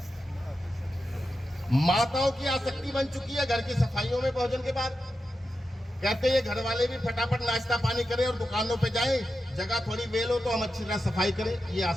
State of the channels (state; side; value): normal; both; correlation 0.90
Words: माताओं की आसक्ति बन चुकी है घर की सफाइयों में भोजन के बाद, कहते हैं घर वाले भी फटाफट नाश्ता पानी करें और दुकानों पे जाएं, जगह थोड़ी वेल हो तो हम अच्छी तरह सफाई करें। ये